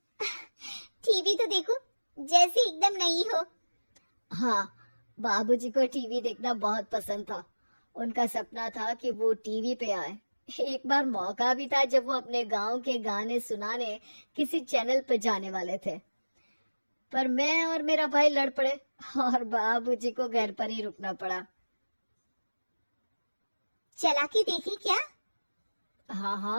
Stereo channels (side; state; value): both; inverted; correlation -1.00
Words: टीवी तो देखो, जैसे एकदम नई हो। हाँ, बाबूजी को टीवी देखना बहुत पसंद था। उनका सपना था कि वो टीवी पे आए। एक बार मौका भी था जब वो अपने गांव के गाने सुनाने किसी चैनल पे जाने वाले थे, पर मैं और मेरा भाई लड़ पड़े और बाबूजी को घर पर ही रुकना पड़ा। चला के देखे क्या?